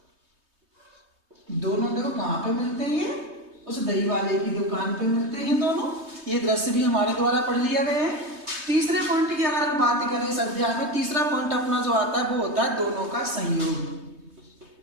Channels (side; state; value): left; late; 3.2 ms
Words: दोनों देखो कहां पे मिलते हैं? उस दही वाले की दुकान पे मिलते हैं दोनों। ये दृश्य भी हमारे द्वारा पढ़ लिया गया है। तीसरे पॉइंट की अगर हम बात करें इस अध्याय में, तीसरा पॉइंट अपना जो आता है वो होता है दोनों का संयोग।